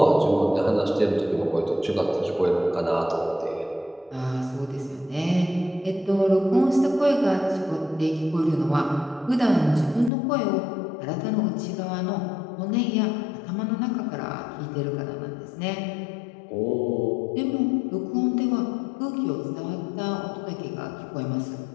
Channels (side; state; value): right; drops out; at 10.1 s